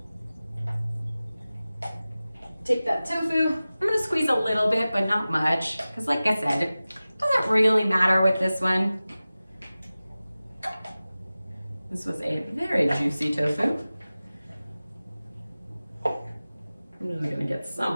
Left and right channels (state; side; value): inverted; both; correlation -0.97